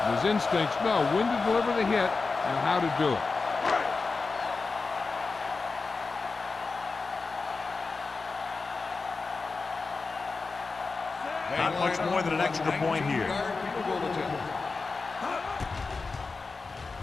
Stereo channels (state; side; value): quieter; right; 4.2 dB